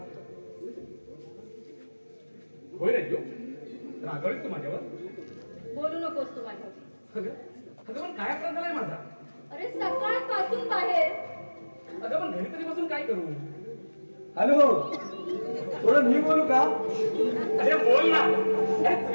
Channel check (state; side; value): inverted; both; correlation -1.00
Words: होय राजू, रागवलीस तू माझ्यावर? बोलू नकोस तू माझ्यावर. अगं पण काय अपराध झालाय माझा? अरे सकाळपासून बाहेर. अगं पण घरी तरी बसून काय करू? हॅलो, थोडं मी बोलू का? अरे बोल ना. अरे